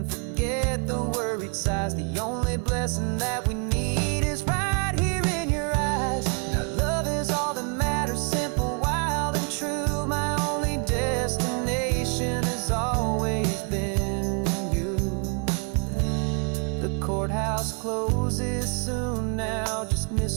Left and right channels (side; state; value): left; quieter; 38.0 dB